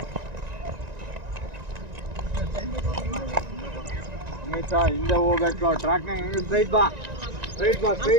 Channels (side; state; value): left; late; 1.9 ms